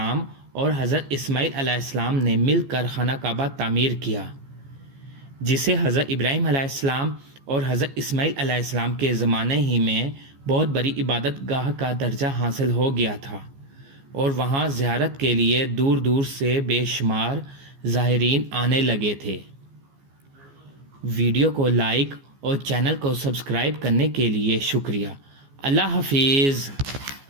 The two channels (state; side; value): late; left; 15 ms